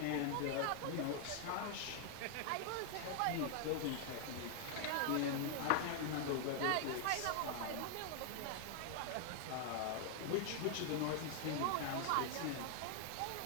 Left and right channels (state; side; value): different; both; correlation 0.00